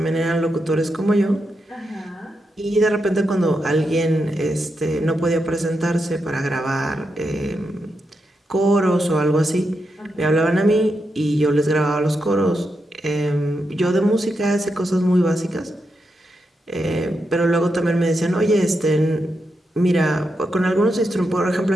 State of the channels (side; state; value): both; normal; correlation 0.85